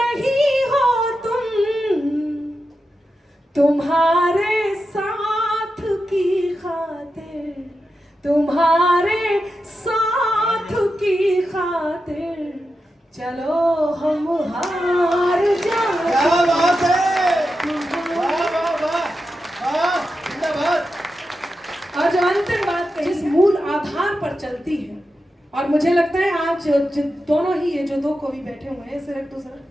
हो तुम, तुम्हारे साथ की खातिर, तुम्हारे साथ की खातिर चलो हम हार जाए। क्या बात है, वाह वाह वाह वाह, जिंदाबाद। और जो अंतिम बात कही, जिस मूल आधार पर चलती है, और मुझे लगता है आज दोनों ही ये जो दो कवि बैठे हुए हैं, सिर्फ दूसरा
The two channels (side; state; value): both; normal; correlation 0.89